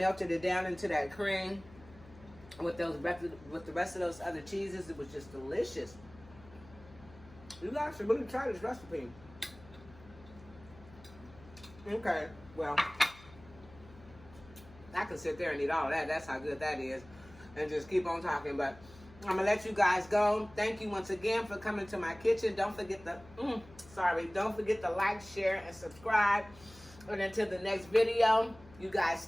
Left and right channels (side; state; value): left; noise; hum, 21 dB below the sound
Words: it down into that cream with the rest of those other cheeses, it was just delicious. You guys should really try this recipe. Okay, well, I can sit there and eat all of that. That's how good that is. And just keep on talking. But I'm going to let you guys go. Thank you once again for coming to my kitchen. Don't forget to, don't forget to like, share, and subscribe. And until the next video, you guys